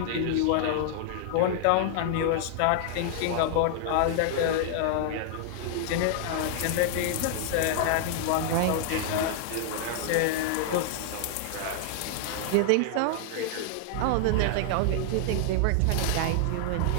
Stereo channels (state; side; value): different; both; correlation -0.01